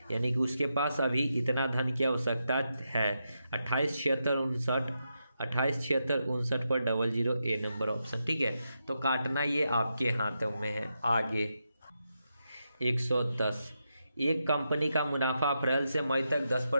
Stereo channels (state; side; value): inverted; both; correlation -0.85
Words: यानी कि उसके पास अभी इतना धन की आवश्यकता है 28,76,59 पर 00 ए नंबर ऑप्शन। ठीक है, तो काटना ये आपके हाथों में है। आगे 110, एक कंपनी का मुनाफा अप्रैल से मई तक